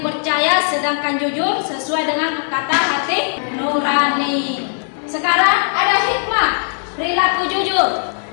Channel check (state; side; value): silent; right; 67 dB below the other